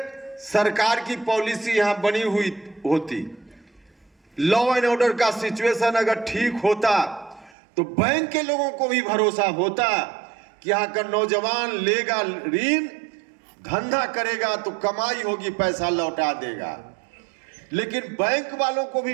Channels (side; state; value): left; drops out; at 7.6 s